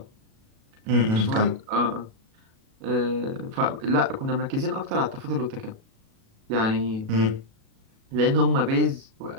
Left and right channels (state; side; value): late; left; 37 ms